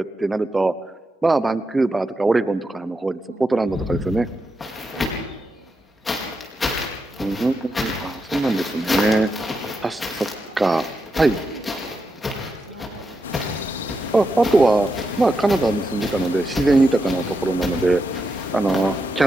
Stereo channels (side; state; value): both; normal; correlation 0.85